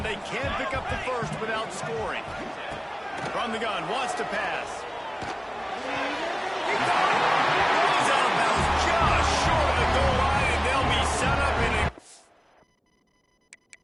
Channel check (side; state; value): both; identical; correlation 1.00